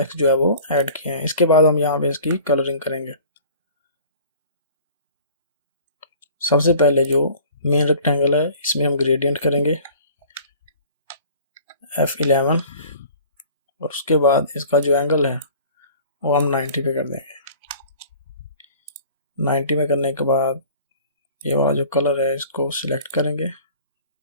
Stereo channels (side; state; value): both; inverted; correlation -0.47